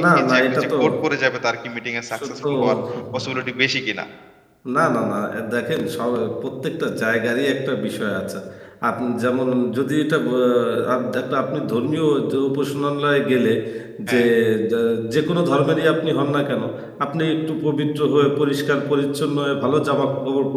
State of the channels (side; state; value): both; identical; correlation 1.00